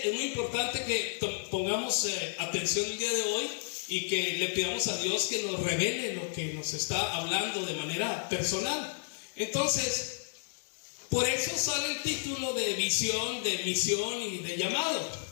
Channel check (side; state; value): right; silent; digital silence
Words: es muy importante que pongamos atención el día de hoy y que le pidamos a Dios que nos revele lo que nos está hablando de manera personal. Entonces, por eso sale el título de visión, de misión y de llamado,